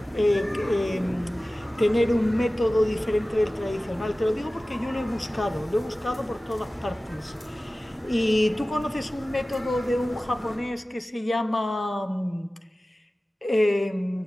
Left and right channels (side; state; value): both; normal; correlation 0.97